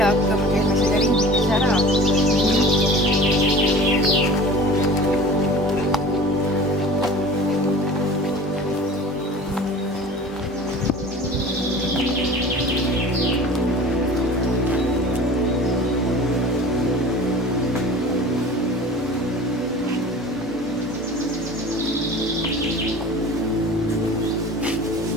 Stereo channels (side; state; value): both; normal; correlation 0.40